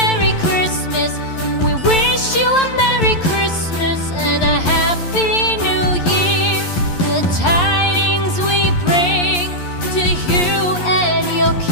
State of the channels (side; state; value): right; late; 11 ms